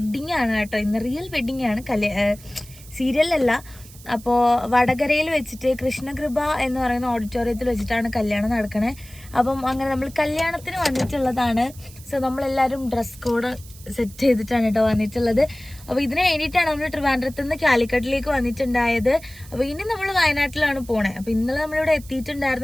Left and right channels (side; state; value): right; noise; hiss, 20 dB below the sound